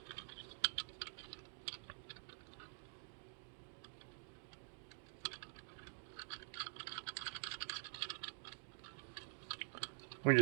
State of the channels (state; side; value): silent; left; digital silence